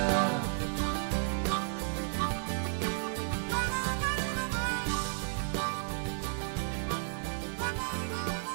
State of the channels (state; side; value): silent; left; digital silence